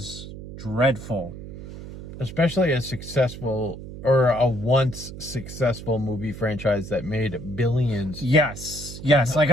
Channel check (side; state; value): right; noise; hum, 12 dB below the sound